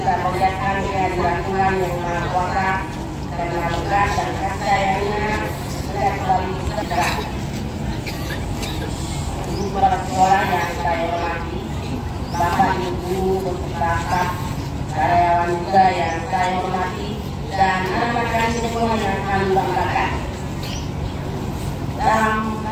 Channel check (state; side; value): identical; both; correlation 1.00